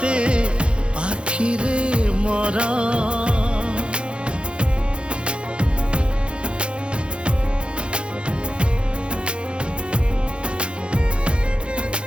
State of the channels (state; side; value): late; left; 0.057 ms